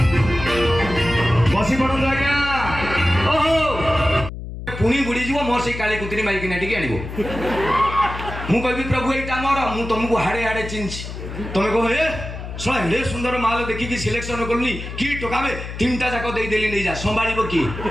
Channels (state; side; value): noise; left; hum, 9 dB below the sound